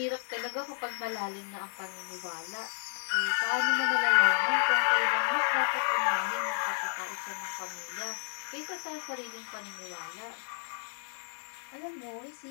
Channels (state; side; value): silent; right; digital silence